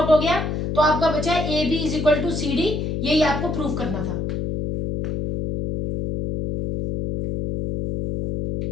हो गया तो आपका बचा है AB is equal to CD। यही आपको प्रूफ करना था।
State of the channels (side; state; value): left; noise; hum, 2 dB below the sound